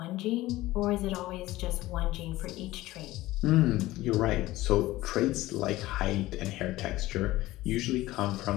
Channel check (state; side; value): quieter; right; 17.4 dB